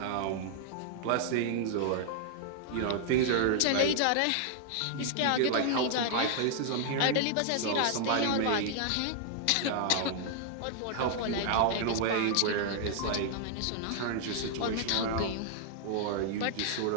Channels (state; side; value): different; both; correlation 0.00